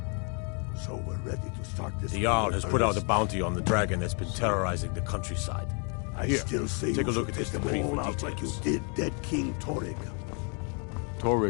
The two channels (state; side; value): quieter; right; 38.1 dB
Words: So we're ready to start this. The Jarl war has in put out a earnest. bounty on the dragon that's been terrorizing the countryside. I Here, still say take a you look should at this take decree them all for out like you details. did dead King Torrig.